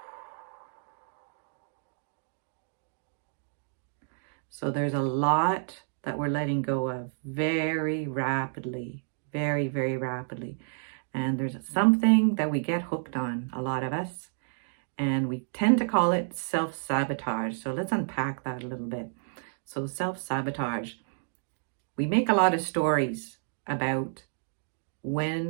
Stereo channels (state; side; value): silent; left; digital silence